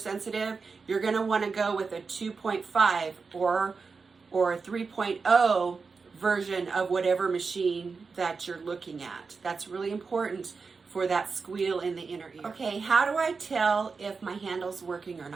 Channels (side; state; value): left; quieter; 4.8 dB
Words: You're going to want to go with a 2.5 or a 3.0 version of whatever machine that you're looking at. That's really important for that squeal in the inner ear. Okay, how do I tell if my handle's working or